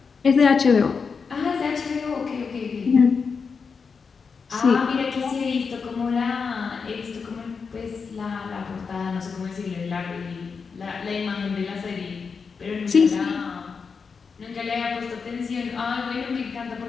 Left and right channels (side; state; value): right; quieter; 5.4 dB